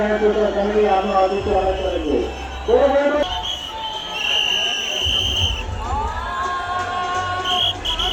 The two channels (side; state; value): both; identical; correlation 1.00